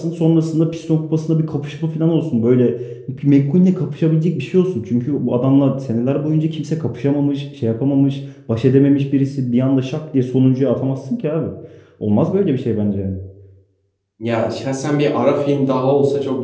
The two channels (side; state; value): both; identical; correlation 1.00